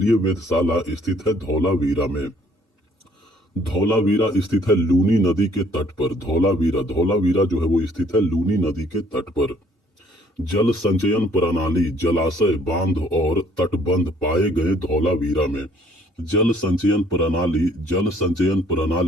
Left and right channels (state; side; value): normal; both; correlation 0.61